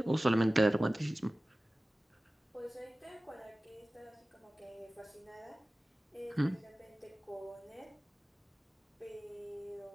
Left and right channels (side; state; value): both; normal; correlation 0.96